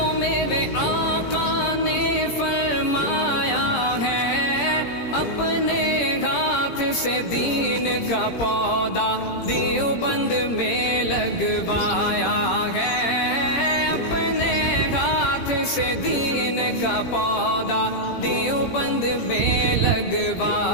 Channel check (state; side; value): late; right; 17 ms